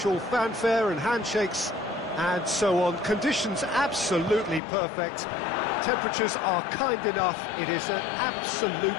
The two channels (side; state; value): right; drops out; at 4.6 s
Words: fanfare and handshakes and so on. Conditions absolutely perfect. Temperatures are kind enough. It is an